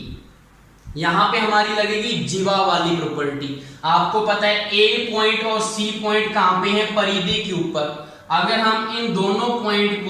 यहां पे हमारी लगेगी जीवा वाली प्रॉपर्टी। आपको पता है ए पॉइंट और सी पॉइंट कहां पे है, परिधि के ऊपर। अगर हम इन दोनों पॉइंट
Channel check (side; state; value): both; identical; correlation 1.00